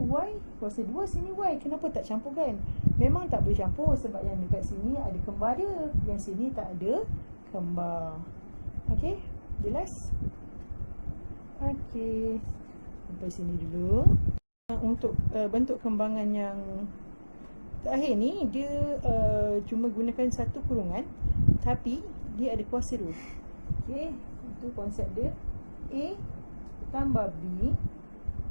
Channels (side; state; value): both; inverted; correlation -1.00